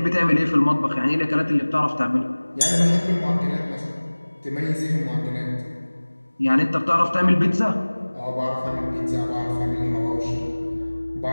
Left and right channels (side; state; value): both; inverted; correlation -1.00